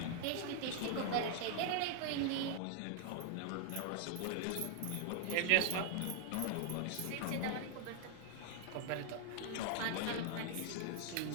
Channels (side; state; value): both; different; correlation 0.00